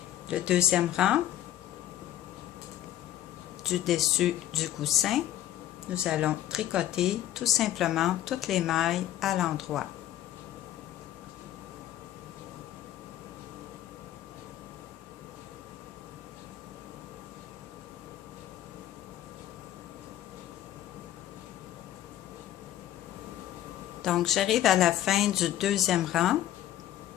Le deuxième rang, du dessus du coussin, nous allons tricoter tout simplement toutes les mailles à l'endroit. Donc, j'arrive à la fin du deuxième rang.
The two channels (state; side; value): quieter; right; 12.7 dB